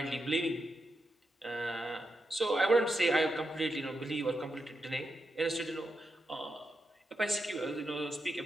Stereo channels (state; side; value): normal; both; correlation 0.86